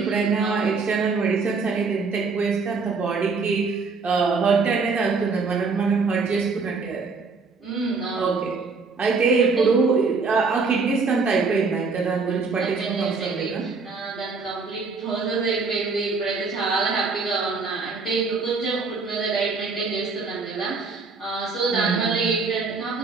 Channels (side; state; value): left; quieter; 4.5 dB